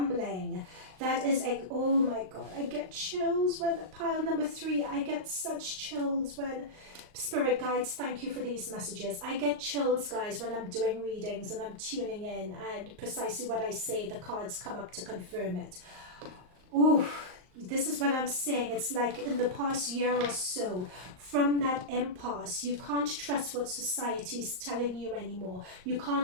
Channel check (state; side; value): late; left; 38 ms